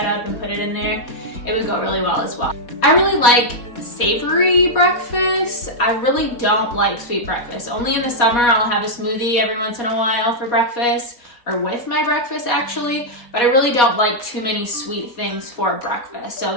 up and put it in there, it would go really well as well. I really like savory breakfast. I really don't like sweet breakfast. Only in the summer I'll have a smoothie every once in a while for breakfast, or with my breakfast actually, but I really don't like too many sweet things for breakfast. So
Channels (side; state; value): right; late; 4.2 ms